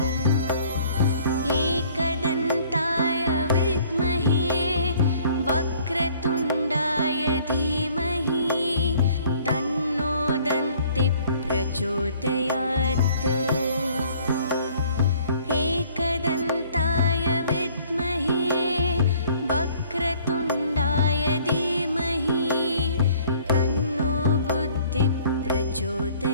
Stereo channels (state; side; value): inverted; both; correlation -0.57